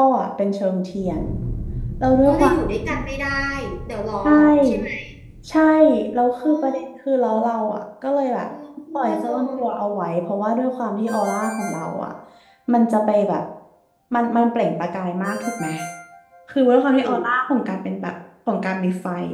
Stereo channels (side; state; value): both; identical; correlation 1.00